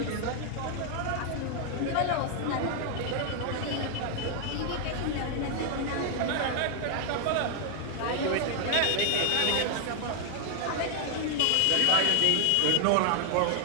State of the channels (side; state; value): both; different; correlation 0.00